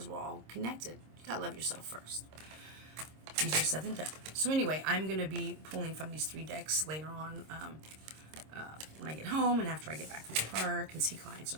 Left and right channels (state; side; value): late; left; 26 ms